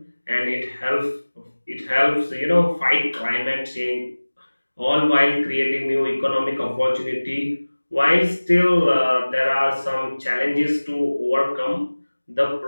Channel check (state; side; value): inverted; both; correlation -1.00